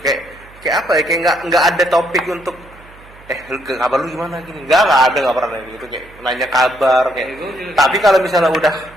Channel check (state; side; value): noise; right; hum, 23 dB below the sound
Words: kayak apa ya kayak nggak ada topik untuk kabar lu gimana gini nggak ada nggak pernah gitu kayak nanya kabar kayak tapi kalau misalnya